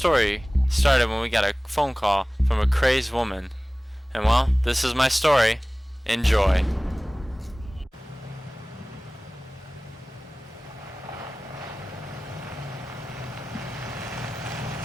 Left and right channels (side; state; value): both; normal; correlation 0.98